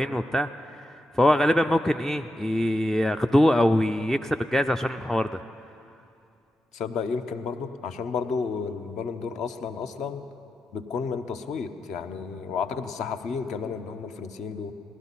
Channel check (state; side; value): normal; both; correlation 0.88